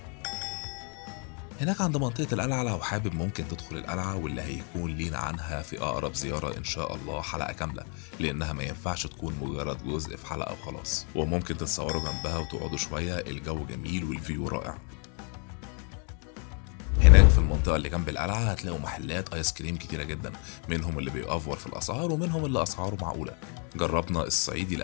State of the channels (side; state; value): right; quieter; 38.2 dB